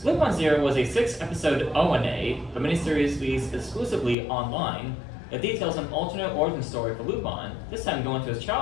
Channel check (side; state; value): right; drops out; at 4.2 s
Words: Lupin Zero was a 6-episode ONA, a miniseries released exclusively online that details an alternate origin story for Lupin, this time going to his